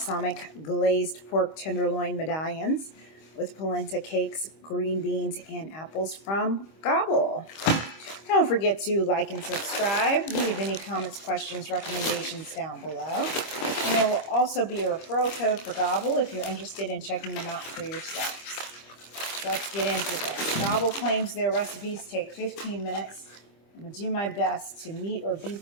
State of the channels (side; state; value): right; late; 25 ms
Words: pork tenderloin medallions with polenta cakes, green beans, and apples from Gobble. Don't forget to like and subscribe. Leave any comments, questions, recommendations down below. And there will also be a referral code for Gobble if you're interested in checking them out for yourselves. So let's get into this. Gobble claims their recipes take 15 minutes. I'm going to do my best to meet or beat